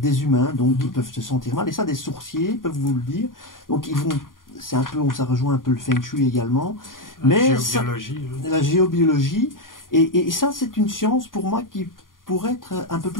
humains, donc ils peuvent se sentir mal. Et ça, des sourciers peuvent vous le dire. Donc ils vont, c'est un peu, ça rejoint un peu le feng shui également. Mais la géobiologie. Et ça, c'est une science pour moi qui pourrait être un peu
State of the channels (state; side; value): late; right; 0.90 ms